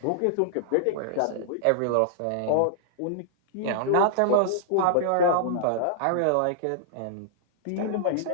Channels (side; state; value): both; different; correlation -0.01